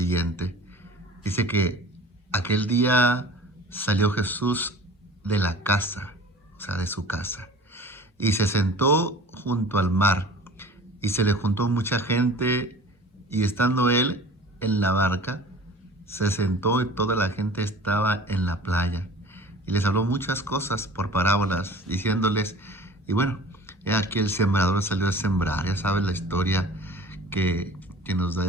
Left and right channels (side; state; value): both; normal; correlation 0.43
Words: Dice que aquel día salió Jesús de la casa, o sea, de su casa, y se sentó junto al mar, y se le juntó mucha gente, y estando él en la barca, se sentó y toda la gente estaba en la playa, y les habló muchas cosas por parábolas, diciéndoles, y bueno, he aquí el sembrador salió a sembrar. Ya sabes la historia que nos da